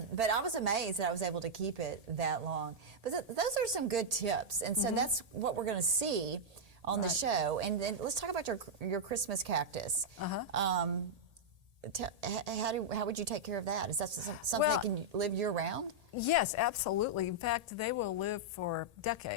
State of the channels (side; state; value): left; late; 1.8 ms